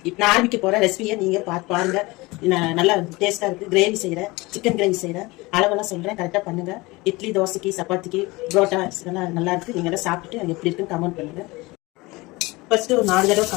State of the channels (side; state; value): right; quieter; 22.6 dB